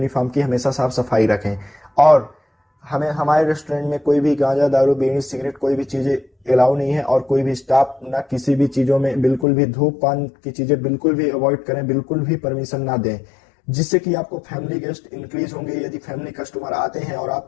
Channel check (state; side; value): drops out; right; at 9.5 s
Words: की हमेशा साफ सफाई रखें। और हमें हमारे रेस्टोरेंट में कोई भी गांजा, दारू, बीड़ी, सिगरेट कोई भी चीजें अलाउ नहीं है और कोई भी स्टाफ ना किसी भी चीजों में बिल्कुल भी धूमपान की चीजें बिल्कुल भी अवॉइड करें, बिल्कुल भी परमिशन ना दें, जिससे कि आपको फैमिली गेस्ट इंक्रीज होंगे। यदि फैमिली कस्टमर आते हैं और